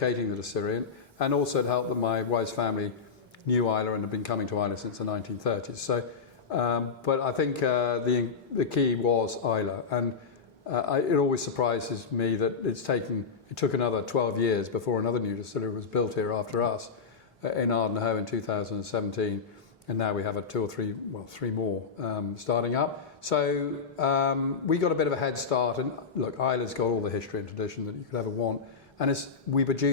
the distillery. And also it helped that my wife's family knew Islay and had been coming to Islay since the 1930s. So, but I think the key was Islay, and it always surprises me that it took another 12 years before another new distillery was built here after us in Ardenhoe in 2017, and now we have three more starting up. So we got a bit of a head start, and look, Islay's got all the history and tradition that you could ever want, and we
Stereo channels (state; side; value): quieter; right; 5.4 dB